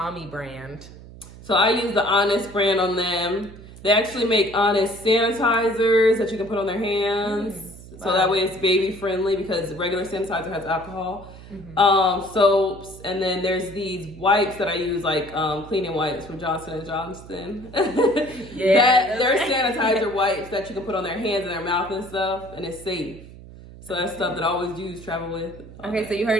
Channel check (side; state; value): right; noise; hum, 17 dB below the sound